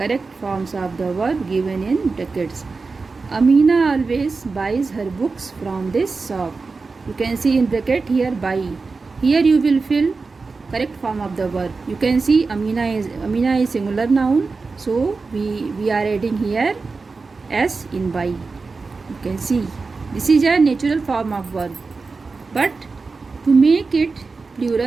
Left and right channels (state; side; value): quieter; left; 4.2 dB